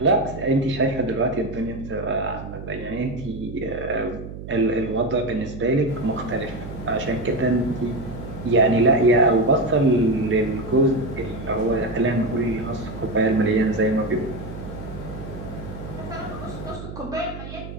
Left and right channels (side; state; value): right; noise; hum, 11 dB below the sound